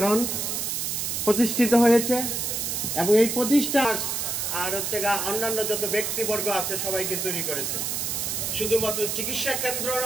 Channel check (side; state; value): right; noise; hiss, 1 dB below the sound